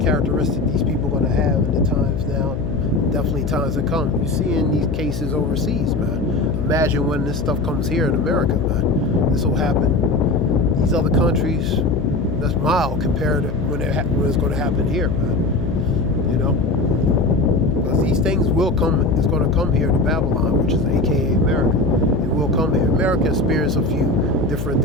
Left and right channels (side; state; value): left; noise; hum, 4 dB below the sound